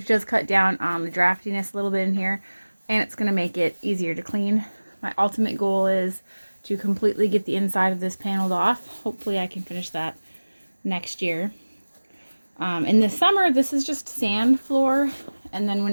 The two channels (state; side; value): inverted; both; correlation -1.00